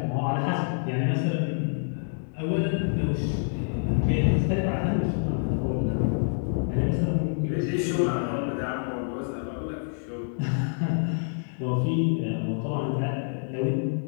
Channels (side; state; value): right; silent; digital silence